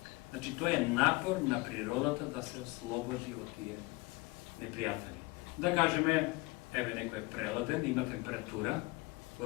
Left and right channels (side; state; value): right; quieter; 23.6 dB